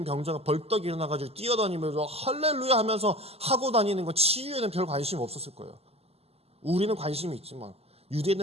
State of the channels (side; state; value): left; late; 0.29 ms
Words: 병자가 벌떡 일어나가지고 뛰어다니면서 할렐루야 하면서 하고 다니는 거, 치유에는 별 관심이 없었을 거예요. 우리는 관심이 있지만